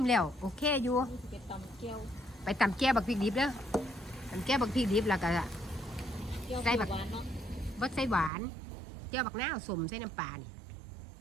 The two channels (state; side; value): drops out; left; at 8.3 s